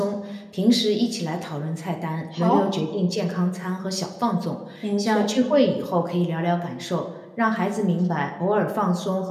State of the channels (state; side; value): identical; both; correlation 1.00